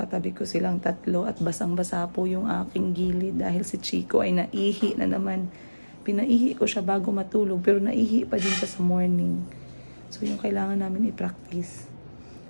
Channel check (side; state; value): both; inverted; correlation -1.00